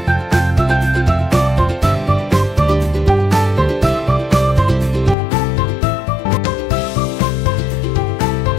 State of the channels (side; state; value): right; drops out; at 5.2 s